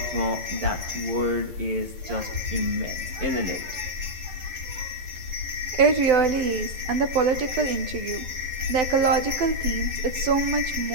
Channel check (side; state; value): left; late; 11 ms